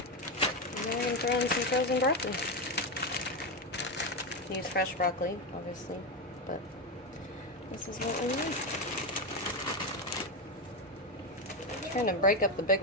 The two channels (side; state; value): both; normal; correlation 0.12